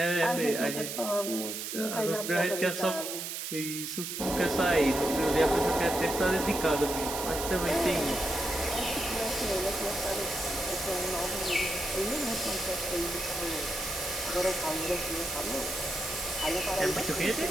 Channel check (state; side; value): noise; right; hiss, 5 dB below the sound